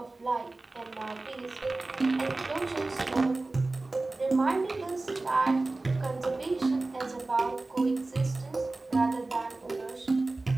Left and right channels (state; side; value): quieter; left; 3.2 dB